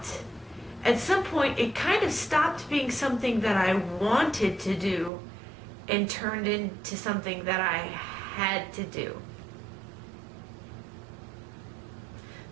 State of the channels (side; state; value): left; drops out; at 5.1 s